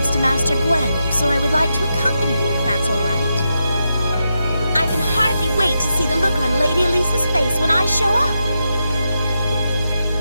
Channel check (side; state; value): both; inverted; correlation -0.85